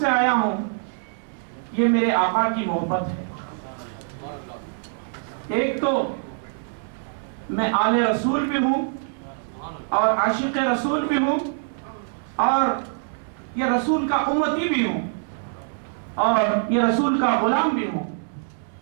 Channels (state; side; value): silent; left; digital silence